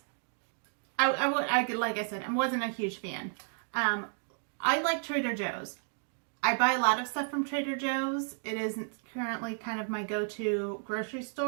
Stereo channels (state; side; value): silent; left; 56 dB below the other